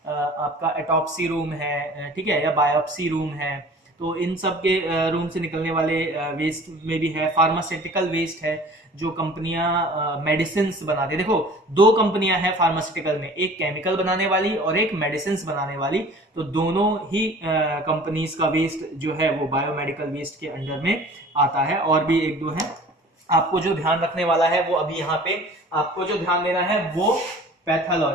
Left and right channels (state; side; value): normal; both; correlation 0.46